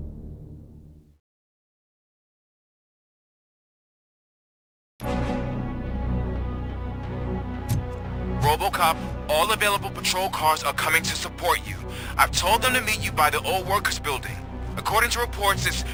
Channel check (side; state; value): both; identical; correlation 1.00